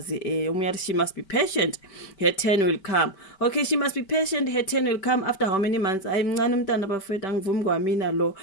Omunye athi she must be patient, her turn will come. Okay, she must be patient, her turn will come after how many months? Hayi mncane umntana bafowethu, angivumi kwamina lo.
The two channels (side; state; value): right; late; 5.2 ms